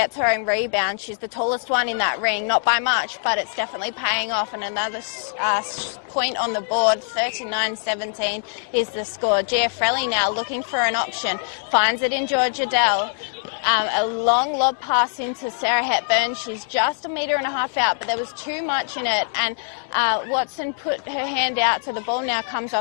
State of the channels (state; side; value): silent; right; digital silence